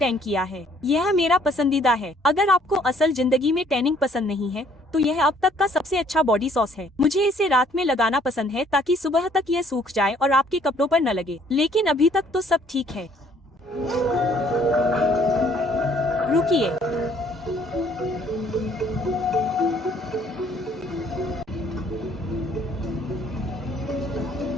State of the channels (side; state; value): both; normal; correlation 0.62